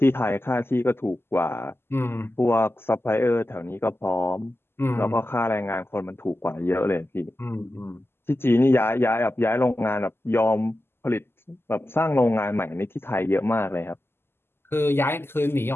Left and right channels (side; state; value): right; late; 0.12 ms